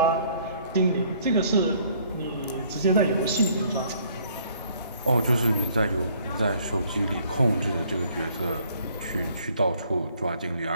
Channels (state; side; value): inverted; both; correlation -0.61